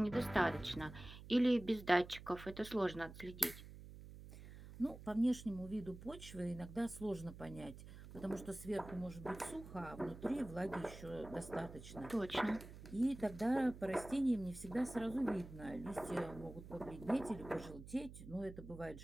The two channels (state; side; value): noise; right; hum, 14 dB below the sound